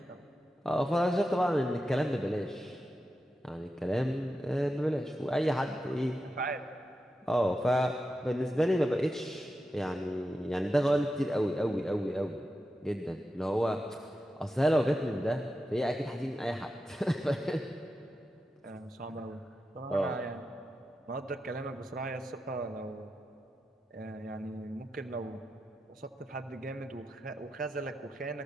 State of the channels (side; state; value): both; normal; correlation 0.89